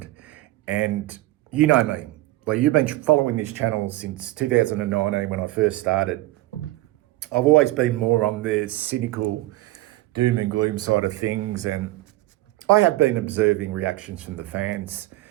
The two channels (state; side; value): quieter; left; 17.7 dB